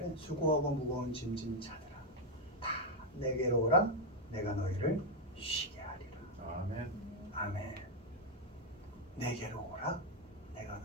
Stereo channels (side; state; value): both; normal; correlation 0.03